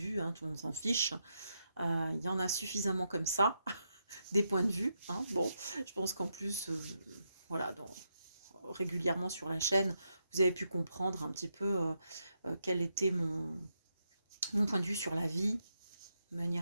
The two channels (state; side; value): inverted; both; correlation -0.82